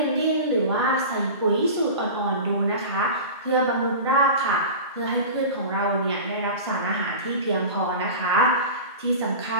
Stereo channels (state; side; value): inverted; both; correlation -0.32